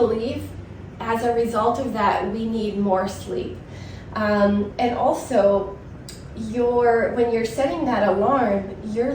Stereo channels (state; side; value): identical; both; correlation 1.00